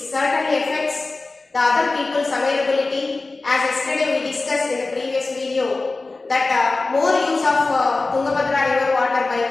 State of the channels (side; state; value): right; quieter; 3.5 dB